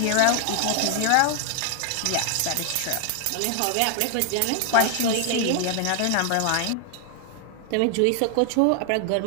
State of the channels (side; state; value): both; different; correlation 0.00